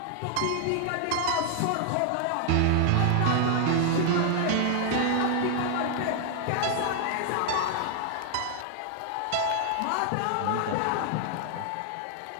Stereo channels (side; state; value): both; different; correlation 0.00